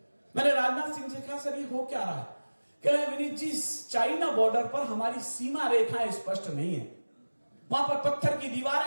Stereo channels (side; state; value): both; inverted; correlation -1.00